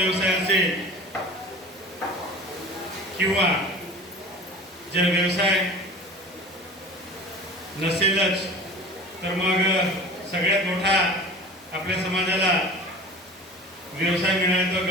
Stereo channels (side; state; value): both; normal; correlation 0.38